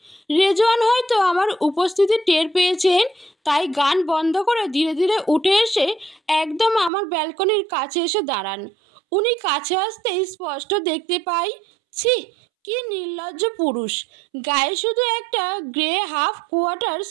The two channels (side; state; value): left; drops out; at 6.9 s